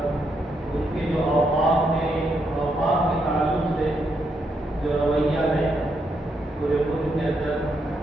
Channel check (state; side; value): normal; both; correlation 0.79